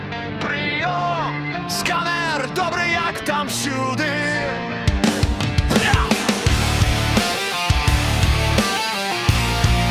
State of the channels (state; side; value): identical; both; correlation 1.00